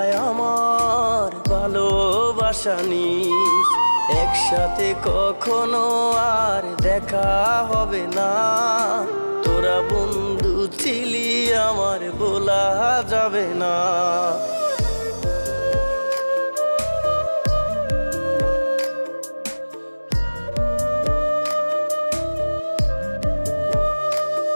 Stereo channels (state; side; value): inverted; both; correlation -1.00